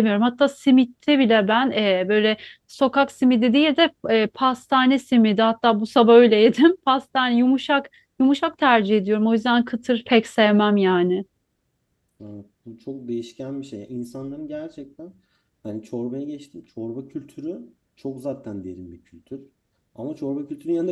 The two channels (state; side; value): identical; both; correlation 1.00